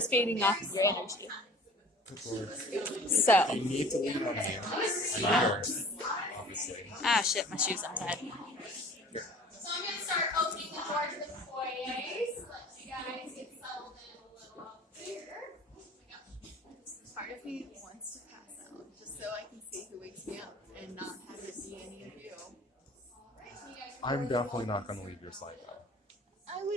feeding off of your energy. Good Lord. So, You need to lean on me. I'm yours, obviously. shit, my shoe's untied. Here. So I'm going to start opening the door to the foyer, so let you guys get settled in a little up there. Part of me wants to pass out just so I can see who wakes me up and not have it be any of you. I'm definitely not going to leave your side, though. I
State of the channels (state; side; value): normal; both; correlation 0.47